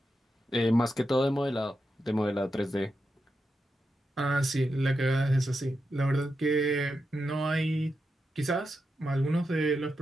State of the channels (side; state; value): both; normal; correlation 0.87